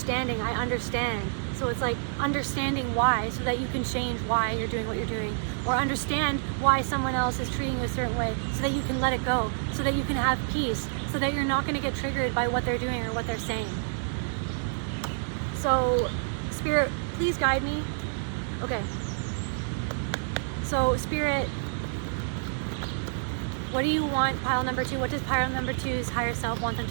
I understand. So it's like understanding why, so that you can change why you're doing what you're doing, or understand why someone else is treating you a certain way, so that you can let it go, so that you can have peace, so that you're not going to get triggered by what they're doing or what they're saying. So Spirit, please guide me. Okay. So Spirit, what do you want pile number 2? What does pile number 2's higher self want them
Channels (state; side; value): silent; left; 59 dB below the other